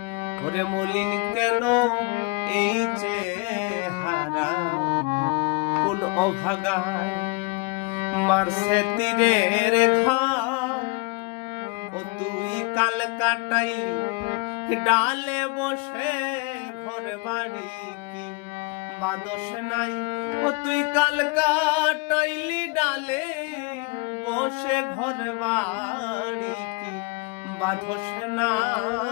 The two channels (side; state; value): right; quieter; 27.6 dB